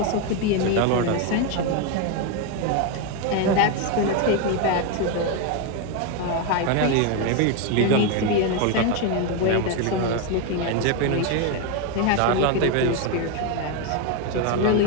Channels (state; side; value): different; both; correlation 0.02